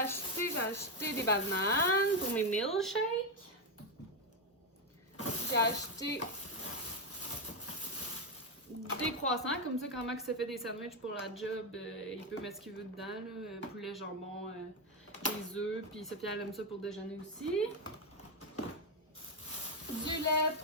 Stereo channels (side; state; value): both; normal; correlation 0.07